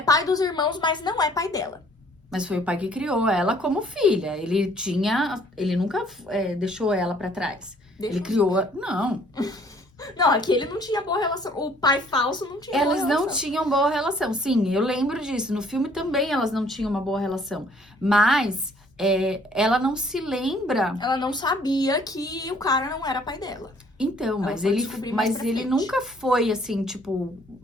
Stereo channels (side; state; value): both; normal; correlation 0.59